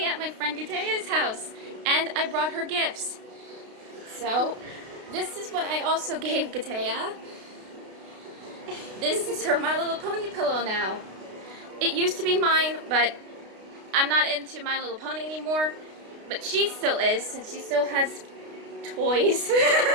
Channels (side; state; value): left; late; 32 ms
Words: at my friend Katya's house, and I brought her gifts. So, this is what I also gave Katya. This is her My Little Pony pillow now. It used to be mine, but I'm not into My Little Pony anymore. But she still is, since she still has toys.